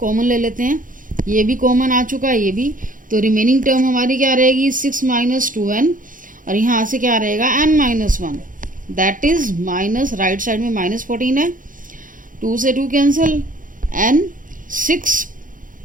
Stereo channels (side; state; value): left; late; 0.39 ms